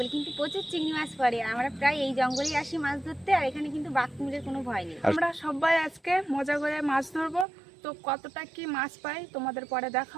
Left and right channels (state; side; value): drops out; left; at 7.5 s